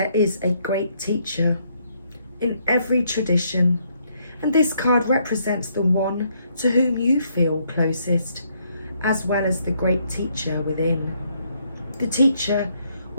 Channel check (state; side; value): inverted; both; correlation -0.72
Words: is a great teacher in every tradition, and this card represents the one to whom you feel closest, as well as the great teacher within. The teacher